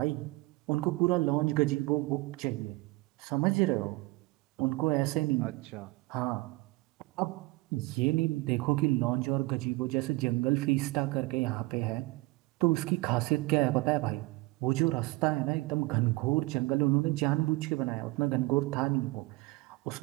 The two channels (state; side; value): quieter; left; 22.7 dB